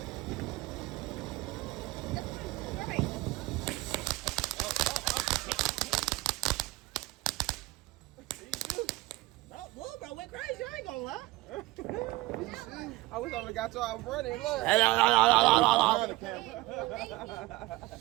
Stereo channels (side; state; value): left; quieter; 19.9 dB